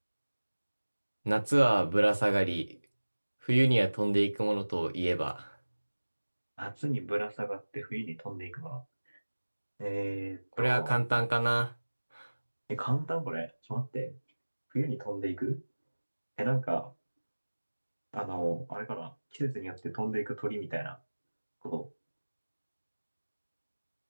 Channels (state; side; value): inverted; both; correlation -1.00